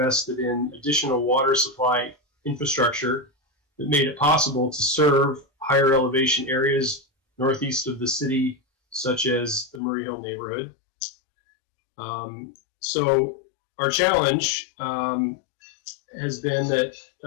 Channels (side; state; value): right; drops out; at 9.8 s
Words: in additional water supply infrastructure that made it possible to serve higher elevation areas northeast of the city, such as the Murray Hill neighborhood. So our challenge has been that